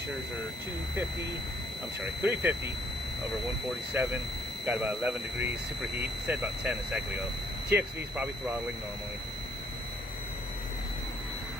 are 350 over 147. Got about 11 degrees superheat. Said about 10 a second ago. TXV is probably throttling normally.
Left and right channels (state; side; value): normal; both; correlation 0.66